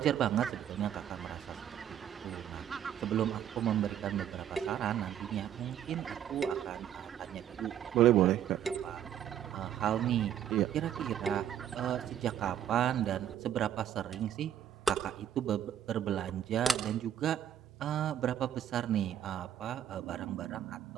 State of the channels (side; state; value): left; quieter; 10.1 dB